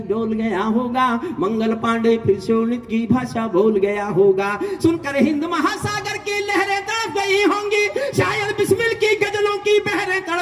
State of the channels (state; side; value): identical; both; correlation 1.00